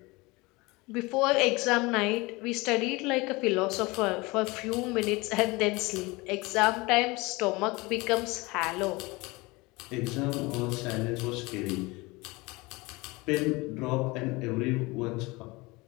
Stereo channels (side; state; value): right; quieter; 23.8 dB